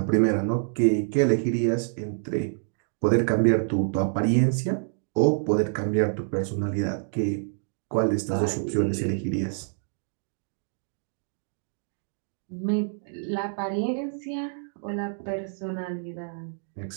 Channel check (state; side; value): silent; left; digital silence